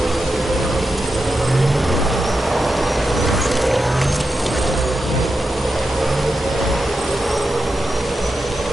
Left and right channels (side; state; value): both; normal; correlation 0.89